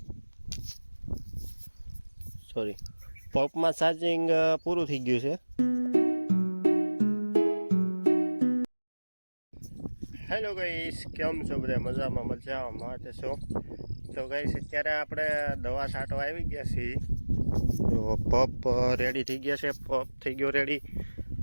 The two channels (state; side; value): inverted; both; correlation -1.00